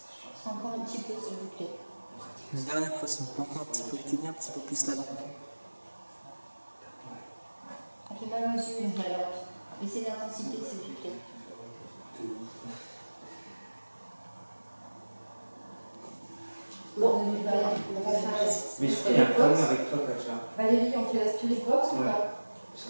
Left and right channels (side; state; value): both; inverted; correlation -1.00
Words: Encore un petit peu s'il vous plaît. Une dernière fois, on peut encore un petit peu éteindre un petit peu plus la lampe. Ça fait mal aux yeux la lampe. Laissez l'intensité s'il vous plaît. Bon, on va faire Mais la il y a un spirit problème box. avec toi, Kacha. Valérie, on fait la spirit box ou Ouais. pas? Parce